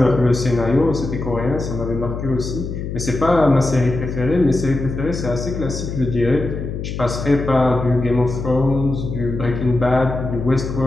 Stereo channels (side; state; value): left; noise; hum, 6 dB below the sound